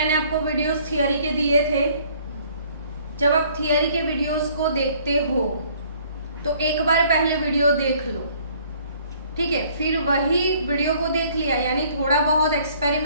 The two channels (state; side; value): inverted; both; correlation -0.59